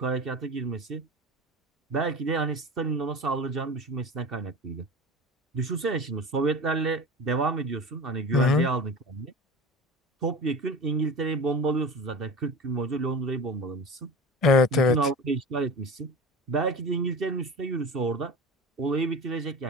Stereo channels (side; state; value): both; normal; correlation 0.32